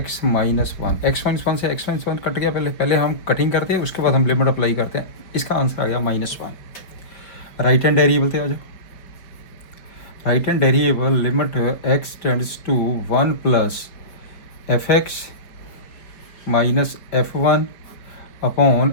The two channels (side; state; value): right; late; 5.1 ms